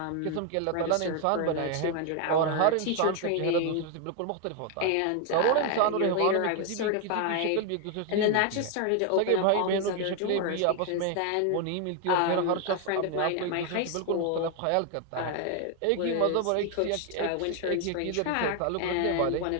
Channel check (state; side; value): different; both; correlation 0.01